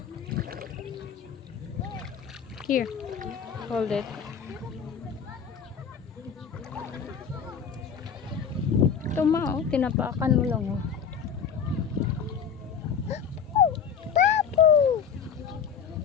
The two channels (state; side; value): quieter; right; 7.0 dB